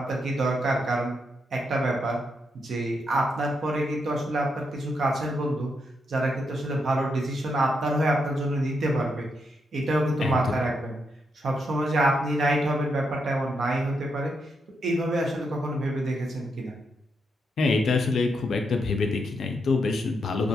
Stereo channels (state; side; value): normal; both; correlation 0.81